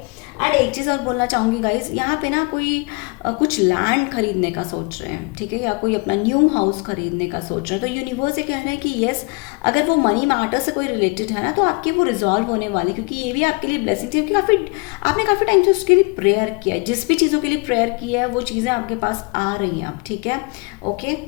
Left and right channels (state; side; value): quieter; right; 30.4 dB